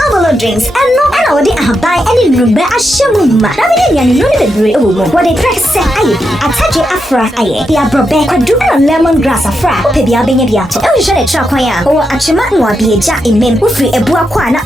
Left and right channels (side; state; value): both; normal; correlation 0.84